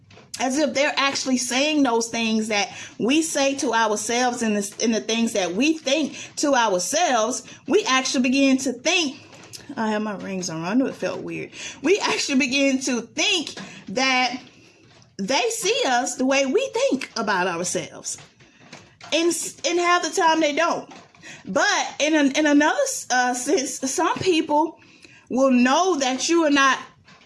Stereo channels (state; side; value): identical; both; correlation 1.00